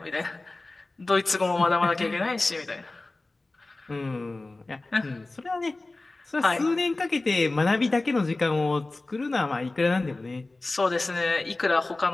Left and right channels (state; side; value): quieter; right; 3.1 dB